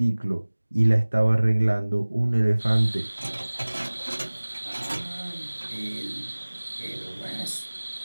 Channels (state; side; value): inverted; both; correlation -1.00